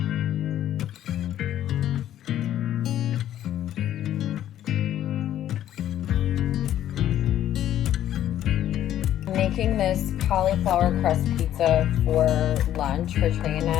Making this cauliflower crust pizza for lunch for Trey and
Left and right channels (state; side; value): quieter; right; 11.7 dB